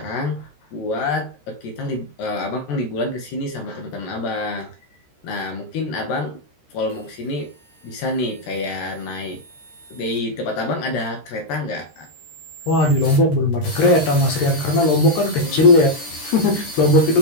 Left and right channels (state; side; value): late; right; 13 ms